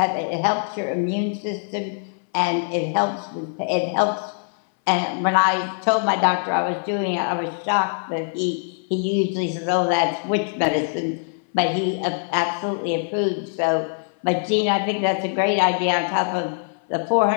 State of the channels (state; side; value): silent; right; 59 dB below the other